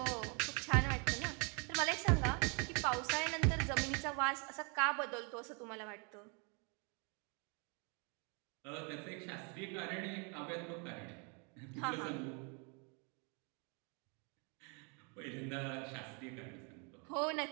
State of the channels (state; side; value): quieter; left; 34.7 dB